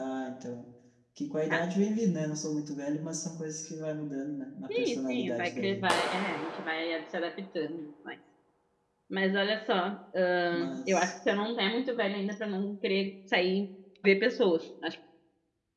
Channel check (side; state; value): both; identical; correlation 1.00